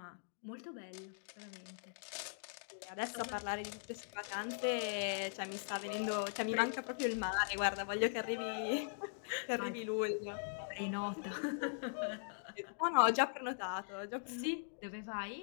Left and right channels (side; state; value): right; silent; digital silence